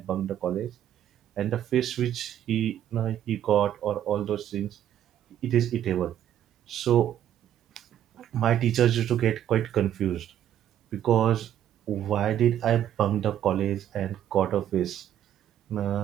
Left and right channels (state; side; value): quieter; left; 10.9 dB